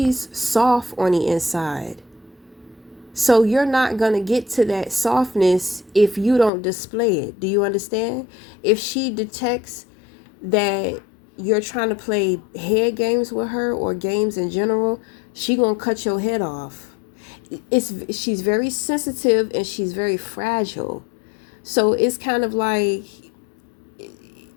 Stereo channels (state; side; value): drops out; right; at 6.5 s